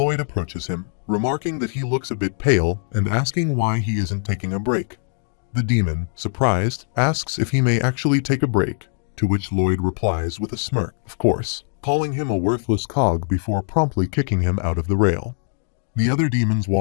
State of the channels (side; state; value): right; silent; 64 dB below the other